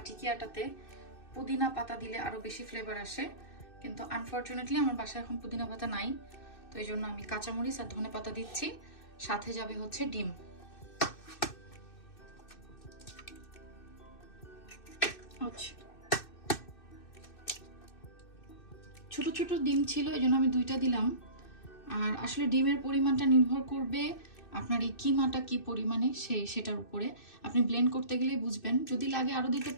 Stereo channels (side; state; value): right; late; 2.6 ms